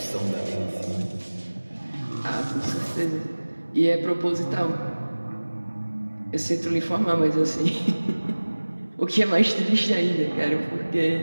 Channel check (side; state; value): both; inverted; correlation -1.00